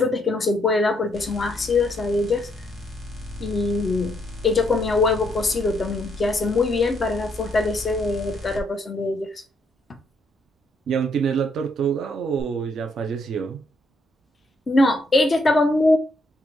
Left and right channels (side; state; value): both; normal; correlation 0.73